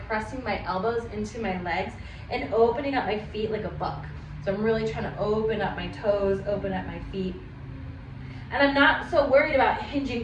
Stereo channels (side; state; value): both; identical; correlation 1.00